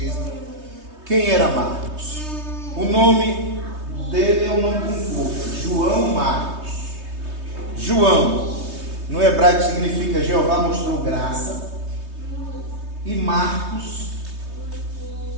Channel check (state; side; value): late; left; 3.2 ms